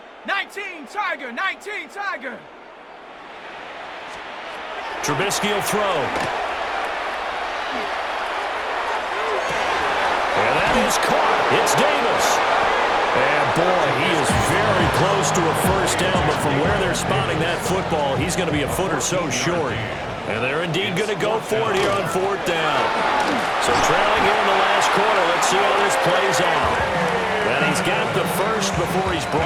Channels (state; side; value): identical; both; correlation 1.00